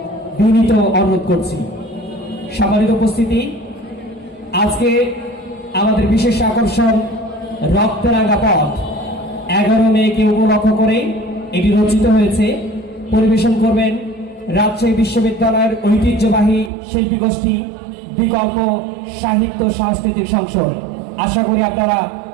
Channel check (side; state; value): left; drops out; at 16.7 s